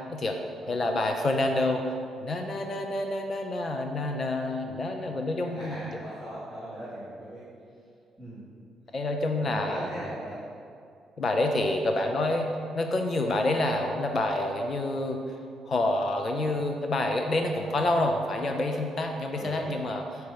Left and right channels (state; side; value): normal; both; correlation 0.78